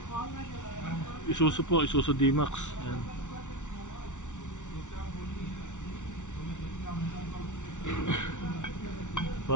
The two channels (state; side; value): late; right; 0.86 ms